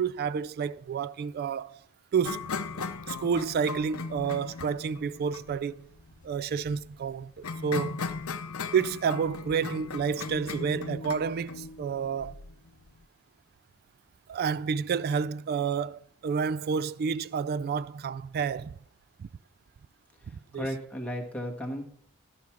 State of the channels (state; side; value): quieter; left; 4.7 dB